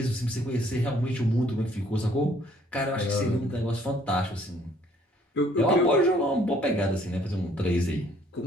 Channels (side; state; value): both; normal; correlation 0.61